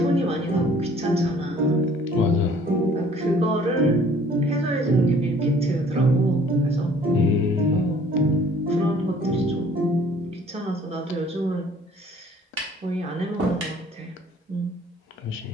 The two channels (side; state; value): both; normal; correlation 0.55